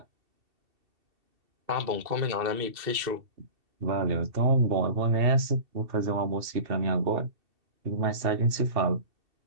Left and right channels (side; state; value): left; late; 2.7 ms